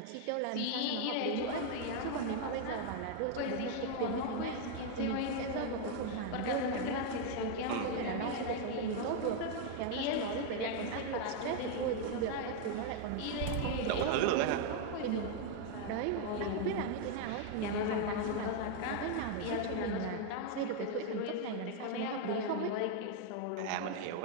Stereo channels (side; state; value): both; different; correlation 0.00